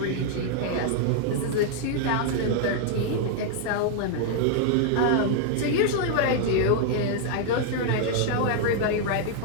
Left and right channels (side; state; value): both; different; correlation -0.01